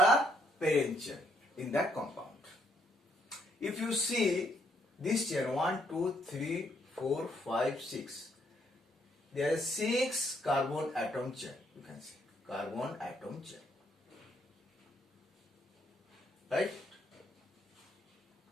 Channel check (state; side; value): normal; both; correlation 0.71